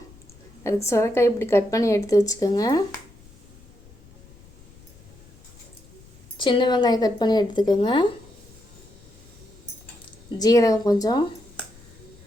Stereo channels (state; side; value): noise; left; rumble, 24 dB below the sound